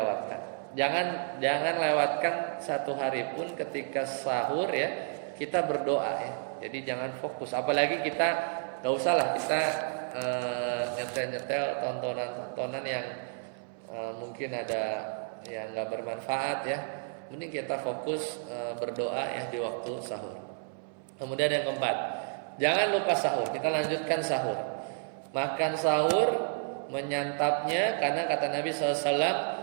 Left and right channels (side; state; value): left; silent; 57 dB below the other